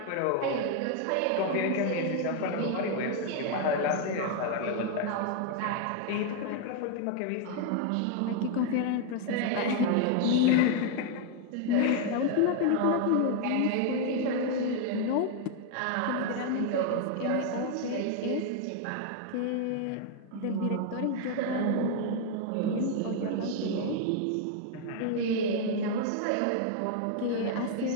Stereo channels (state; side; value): different; both; correlation 0.00